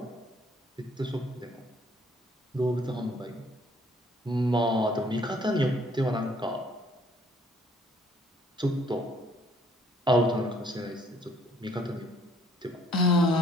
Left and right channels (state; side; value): normal; both; correlation 0.62